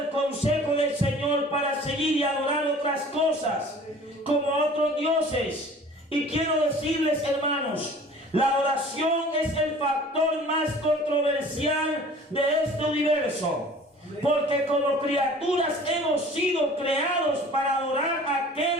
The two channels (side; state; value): both; normal; correlation 0.47